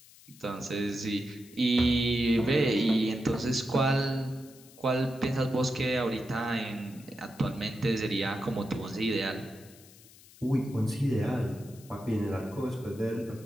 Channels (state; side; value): noise; left; hiss, 23 dB below the sound